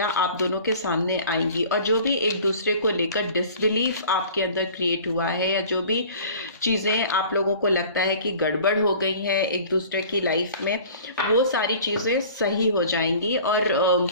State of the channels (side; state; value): both; inverted; correlation -0.45